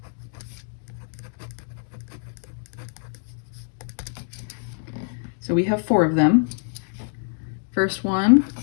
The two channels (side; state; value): right; silent; 62 dB below the other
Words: So we have 4 of them. First one,